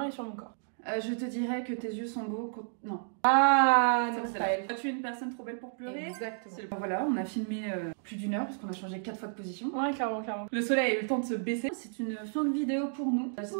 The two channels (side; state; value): left; silent; digital silence